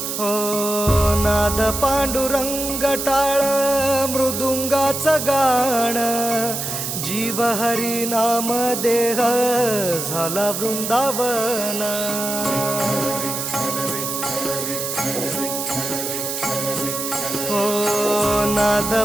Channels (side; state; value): right; noise; hiss, 4 dB below the sound